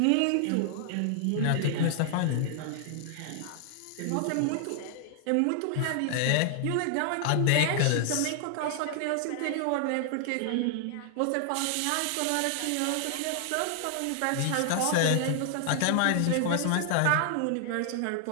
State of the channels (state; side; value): different; both; correlation 0.00